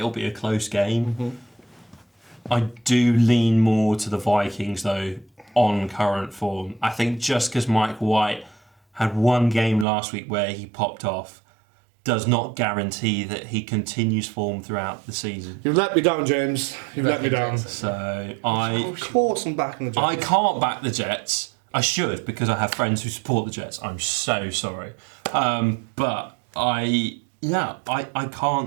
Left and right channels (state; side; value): drops out; left; at 9.9 s